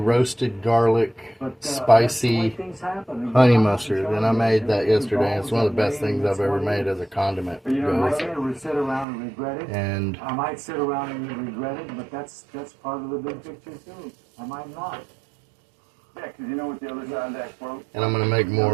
garlic, spicy honey mustard, and I made that yesterday. It's one of the best things I've ever made as a condiment. And I might sit around and regret it, but that's part of the big picture too. I might not. Yeah, because you know what the other side of that quote. And I'm gonna make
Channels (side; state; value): left; drops out; at 9.1 s